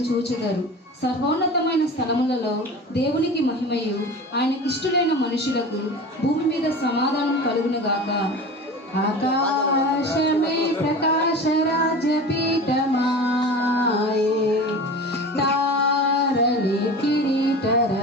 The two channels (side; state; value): both; normal; correlation 0.34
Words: చూచెదరు. సర్వోన్నతమైన స్థలములలో దేవునికి మహిమయు ఆయనకిష్టులైన మనుషులకు భూమి మీద సమాధానం కలుగునుగాక. ఆకాశమే ప్రకాశ రాజపీఠమాయే, తారలే కిరీట